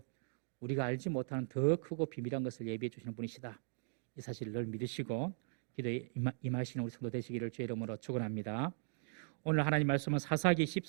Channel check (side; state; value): left; silent; digital silence